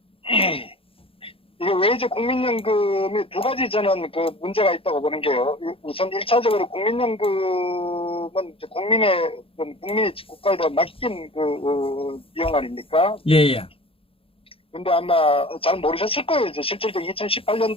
이게 왜 이제 국민연금이 두 가지 저는 문제가 있다고 보는 게요. 우선 1차적으로 국민연금은 이제 국민이 국가에다 맡긴 비용 아닙니까? 예, 예. 근데 아마 잘 모르셨을 거예요. 이제 실질적으로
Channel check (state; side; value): late; right; 0.27 ms